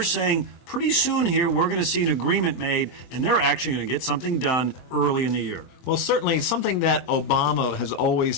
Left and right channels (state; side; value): late; right; 23 ms